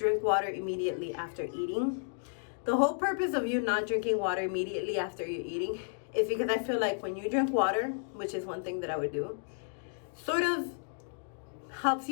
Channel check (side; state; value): right; silent; digital silence